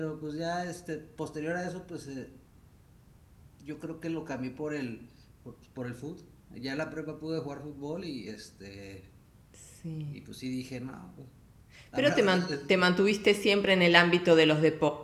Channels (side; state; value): both; identical; correlation 1.00